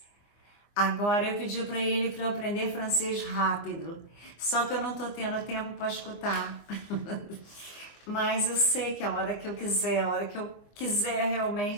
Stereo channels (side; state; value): right; late; 24 ms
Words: Agora eu pedi para ele para eu aprender francês rápido, só que eu não estou tendo tempo para escutar. Mas eu sei que a hora que eu quiser